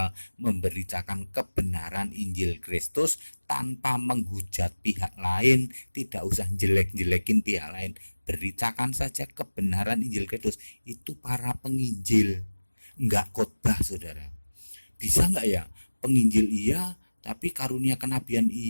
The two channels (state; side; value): inverted; both; correlation -1.00